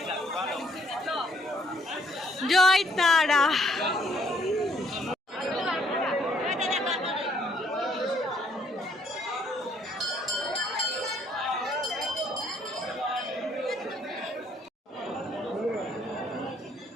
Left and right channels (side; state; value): both; normal; correlation 0.66